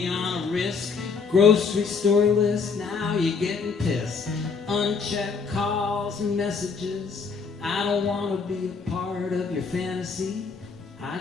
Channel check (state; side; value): quieter; right; 5.2 dB